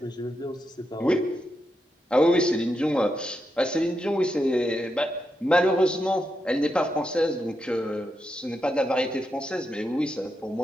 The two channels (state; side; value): normal; both; correlation 0.84